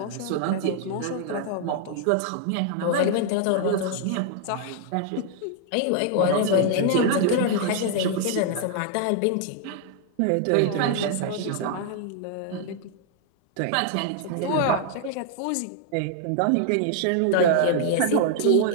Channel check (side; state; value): both; different; correlation 0.00